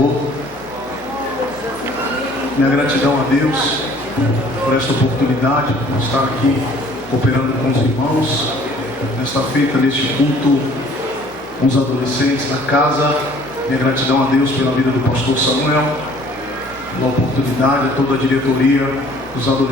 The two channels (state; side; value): normal; both; correlation 0.55